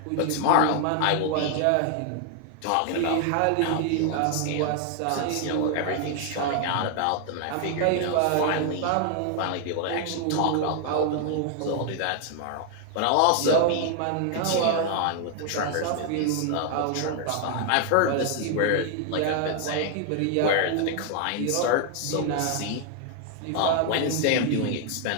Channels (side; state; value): both; different; correlation 0.00